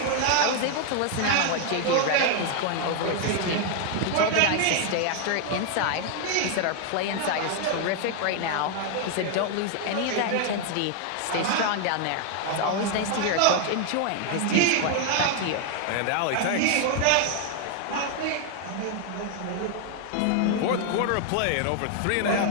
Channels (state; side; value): different; both; correlation 0.00